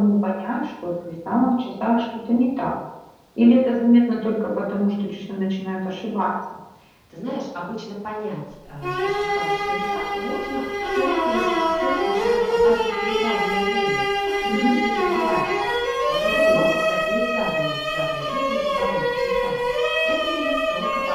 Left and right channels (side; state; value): both; identical; correlation 1.00